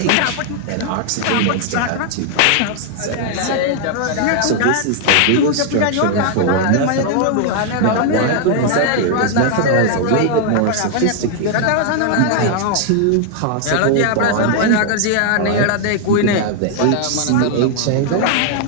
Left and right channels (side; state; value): both; different; correlation 0.00